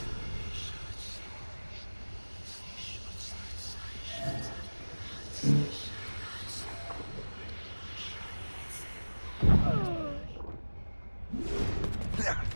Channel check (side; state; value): both; inverted; correlation -1.00